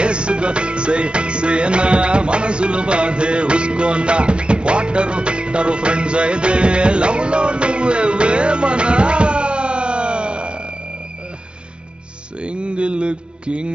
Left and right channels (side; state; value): left; late; 0.056 ms